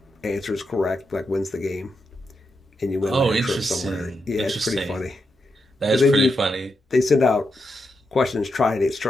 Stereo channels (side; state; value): both; normal; correlation 0.85